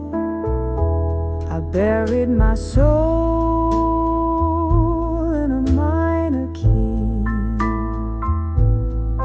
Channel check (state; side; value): identical; both; correlation 1.00